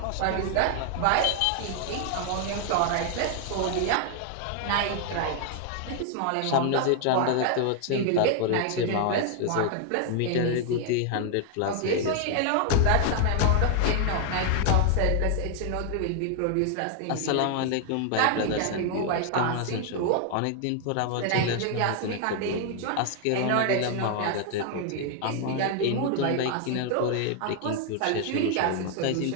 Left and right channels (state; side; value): different; both; correlation 0.00